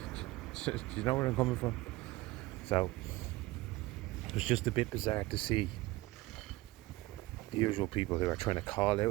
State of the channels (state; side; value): quieter; left; 19.5 dB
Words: Do you know where I'm coming from? So it was just a bit bizarre to see the usual people who are trying to call